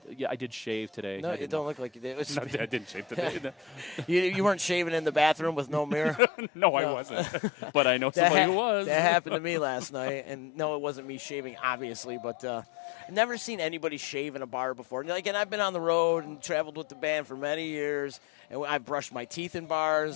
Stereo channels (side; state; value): right; drops out; at 6.2 s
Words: yeah, I did shave today. No, you don't look like you did. No, I didn't shave today. You weren't shaving in the bathroom with no mirror? No, I wasn't. But I know somebody who was. That happened to me last night, and no, it wasn't me shaving, obviously, but I've never seen anybody shave in a bar before. And I've been on the road and traveled with the band for many years, and I've brushed my teeth in